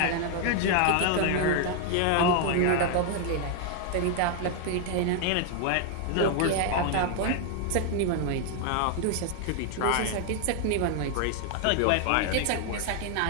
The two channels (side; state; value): both; different; correlation 0.00